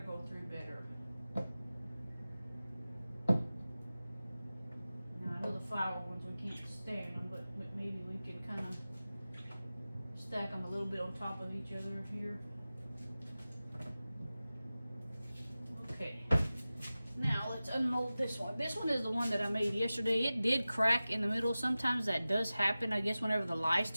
go through better. The flower ones we can't stand them, but maybe we can kind of stack them a little bit on top of each other here. Okay, now let's unmold this one. This one is the one that I made yesterday. It did crack in the middle. Sometimes that does happen, I guess, whenever the lye's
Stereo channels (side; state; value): both; inverted; correlation -0.96